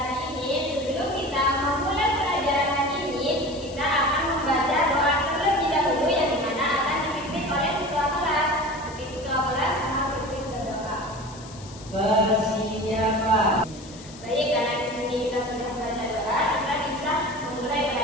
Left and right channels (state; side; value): noise; left; hiss, 19 dB below the sound